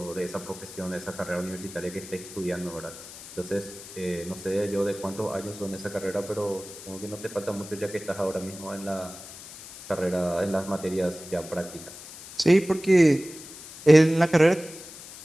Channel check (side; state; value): left; noise; hiss, 15 dB below the sound